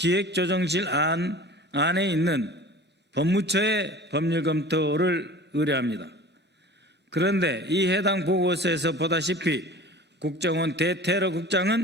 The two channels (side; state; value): both; normal; correlation 0.40